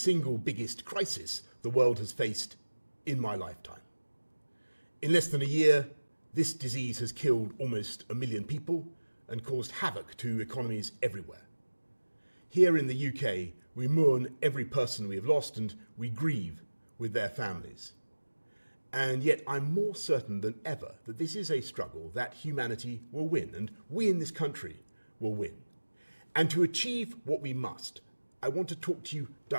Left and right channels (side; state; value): both; inverted; correlation -1.00